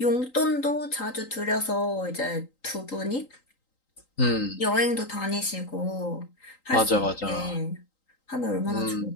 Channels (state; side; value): late; right; 3.8 ms